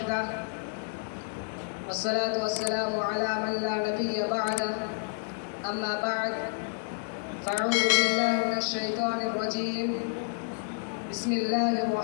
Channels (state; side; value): silent; right; digital silence